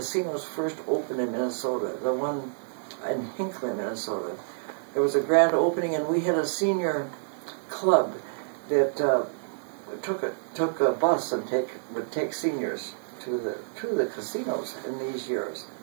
first opened in Minnesota, the one in Hinckley, Minnesota, there was a grand opening, and we had a senior club that took a bus and would take seniors to the casinos in these years.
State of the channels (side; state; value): left; silent; digital silence